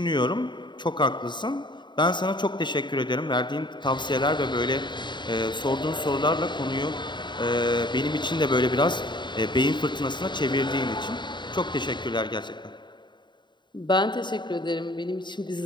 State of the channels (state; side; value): late; right; 0.22 ms